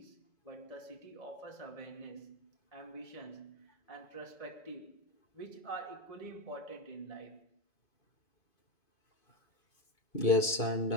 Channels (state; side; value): late; right; 2.5 ms